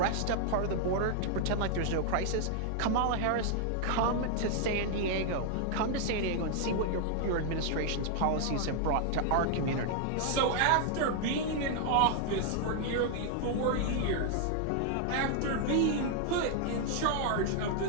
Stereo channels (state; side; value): different; both; correlation 0.00